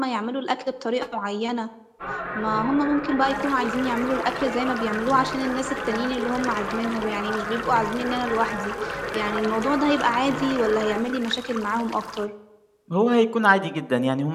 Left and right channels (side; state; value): both; identical; correlation 1.00